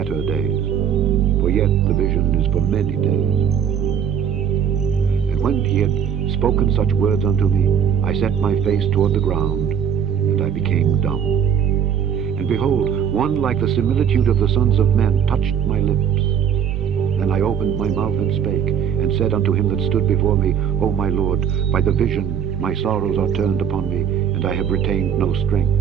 days, for yet the vision is for many days. And when he had spoken such words unto me, I set my face toward the ground, and I became dumb. And behold, one like the similitude of the sons of men touched my lips. Then I opened my mouth and spake, and said unto him that stood before me, O my Lord, by the vision my sorrows are turned upon me, and I have retained no strength.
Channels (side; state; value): left; quieter; 8.2 dB